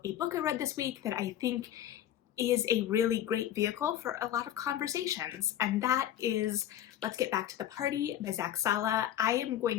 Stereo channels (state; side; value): quieter; right; 11.4 dB